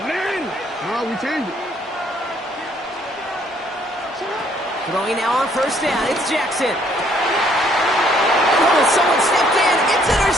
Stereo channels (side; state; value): both; normal; correlation 0.65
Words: We changed it. Throwing now on 1st down. It's Jackson. Oh, someone stepped in. It's